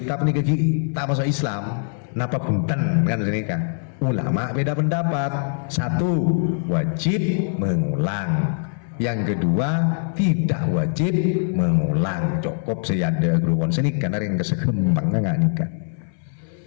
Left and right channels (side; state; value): right; silent; 64 dB below the other